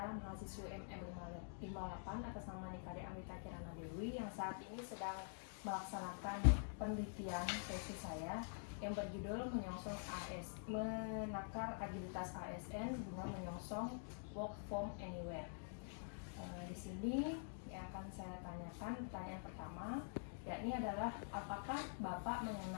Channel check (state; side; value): silent; right; digital silence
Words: mahasiswi MM58 atas nama Nikade Amrita Kirana Dewi yang saat ini sedang melaksanakan penelitian tesis saya yang berjudul menakar agilitas ASN guna menyongsong work from anywhere. Di sini yang akan saya tanyakan, pertanyaan pertama yakni adalah apakah Bapak